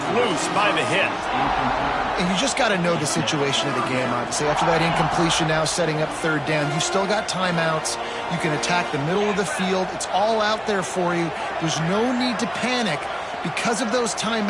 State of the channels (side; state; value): both; identical; correlation 1.00